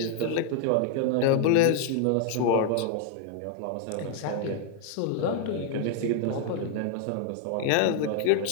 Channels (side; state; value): both; different; correlation 0.00